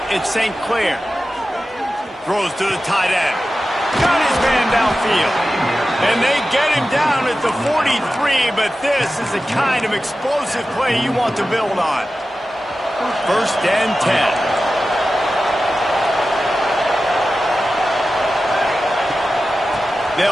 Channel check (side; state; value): both; normal; correlation 0.94